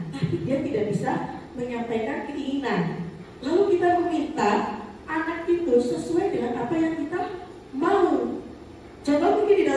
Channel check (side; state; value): both; identical; correlation 1.00